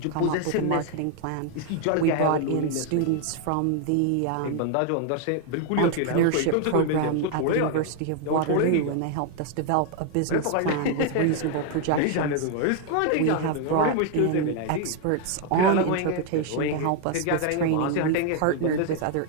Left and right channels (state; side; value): different; both; correlation 0.00